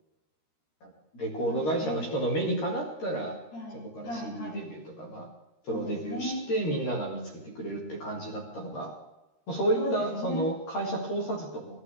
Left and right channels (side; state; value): right; late; 13 ms